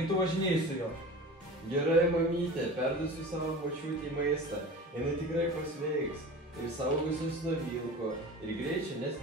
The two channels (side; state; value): both; normal; correlation 0.35